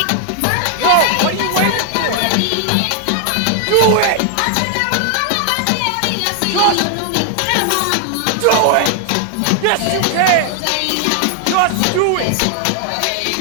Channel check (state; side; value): different; both; correlation 0.00